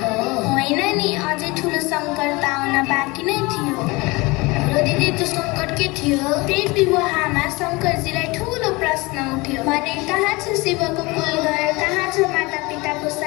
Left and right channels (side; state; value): right; quieter; 24.1 dB